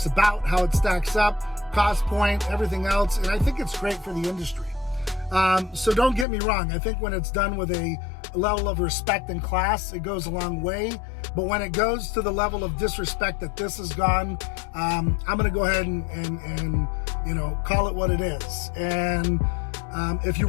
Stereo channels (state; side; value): drops out; right; at 6.2 s